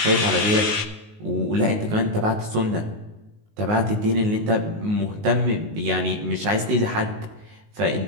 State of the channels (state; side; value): late; left; 19 ms